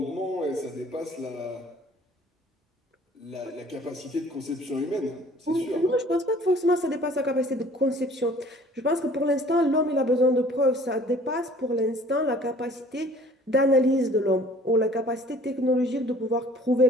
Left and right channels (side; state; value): both; normal; correlation 0.52